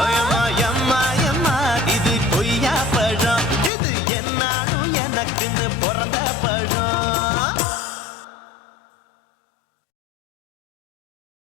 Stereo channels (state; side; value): drops out; right; at 3.7 s